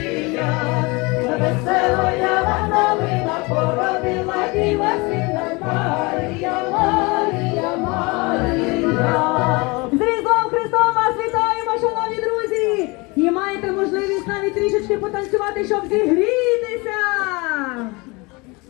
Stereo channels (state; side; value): quieter; right; 26.2 dB